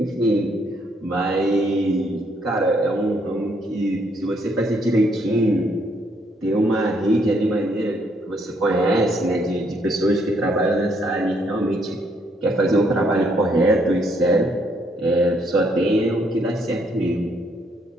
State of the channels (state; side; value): normal; both; correlation 0.71